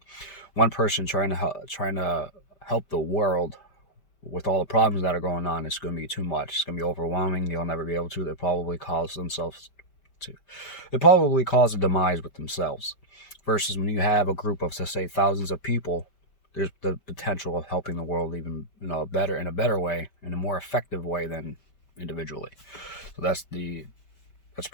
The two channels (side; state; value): right; late; 5.1 ms